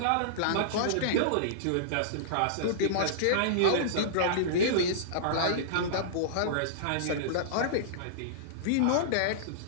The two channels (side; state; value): both; different; correlation -0.03